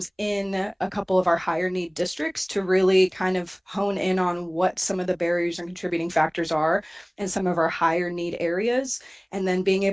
in a couple of our higher need districts to really kind of hone in on what some of the barriers and contributing factors are in some of our higher need areas, and then being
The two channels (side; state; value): both; identical; correlation 1.00